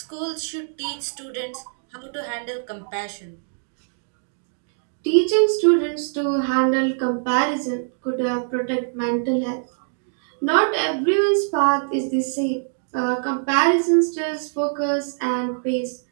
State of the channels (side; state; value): left; silent; digital silence